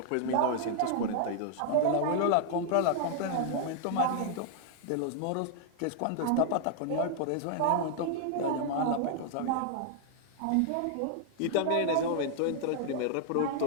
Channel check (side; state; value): both; different; correlation 0.00